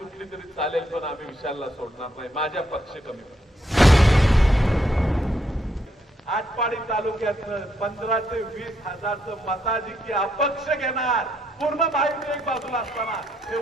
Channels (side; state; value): both; normal; correlation 0.75